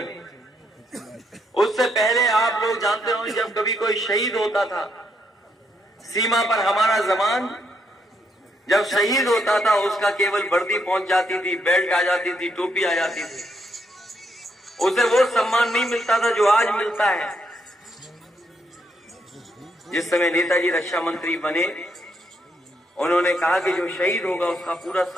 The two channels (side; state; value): both; normal; correlation 0.76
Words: उससे पहले आप लोग जानते हो, जब कभी कोई शहीद होता था सीमा पर, हमारा जवान जब शहीद होता था उसका केवल वर्दी पहुंच जाती थी, बेल्ट आ जाती थी, टोपी आ जाती थी, उसे वो सम्मान नहीं मिलता था जो आज मिलता है। जिस समय नेताजी रक्षा मंत्री बने उन्होंने कहा कि जो शहीद होगा उसका पूरा